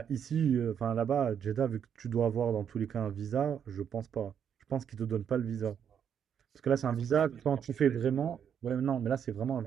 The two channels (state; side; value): quieter; left; 8.3 dB